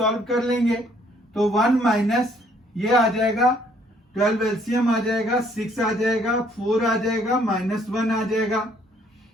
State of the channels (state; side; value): normal; both; correlation 0.64